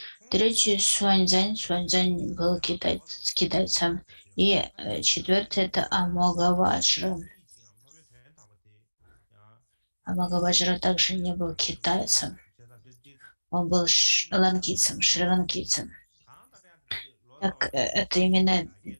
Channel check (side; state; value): both; inverted; correlation -1.00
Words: Третий — Суаньцзянь. Суаньцзянь был китайцем. И четвертый — это Амогаваджра. Амогаваджра также не был китайцем. Он был ланкийцем, шри-ланкийцем. Так, это именно